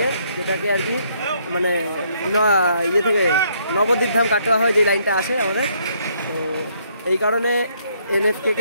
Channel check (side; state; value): both; inverted; correlation -0.69